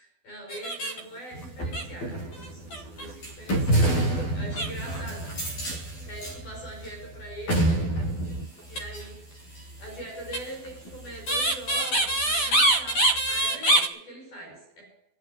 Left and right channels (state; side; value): late; right; 12 ms